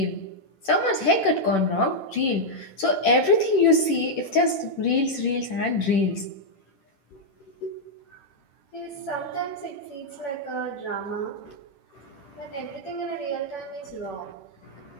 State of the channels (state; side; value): late; right; 11 ms